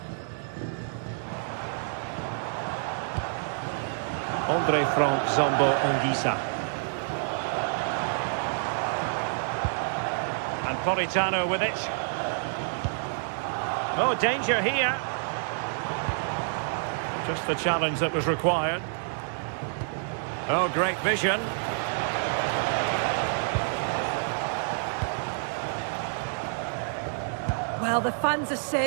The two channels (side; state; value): left; silent; digital silence